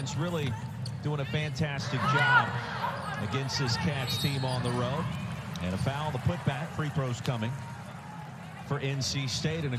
really doing a fantastic job against this Cats team on the road. And a foul, the putback, free throws coming for NC State, and a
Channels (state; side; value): identical; both; correlation 1.00